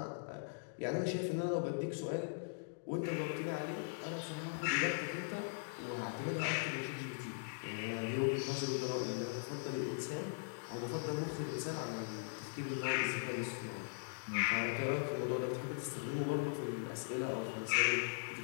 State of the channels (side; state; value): right; silent; digital silence